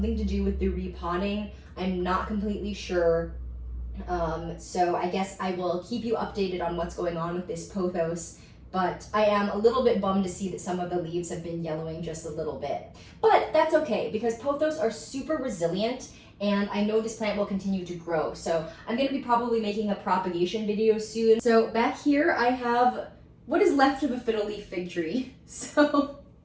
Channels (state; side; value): identical; both; correlation 1.00